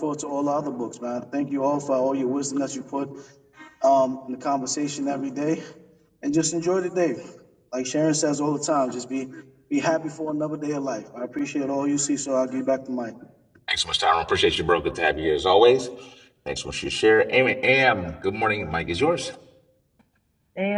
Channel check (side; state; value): both; identical; correlation 1.00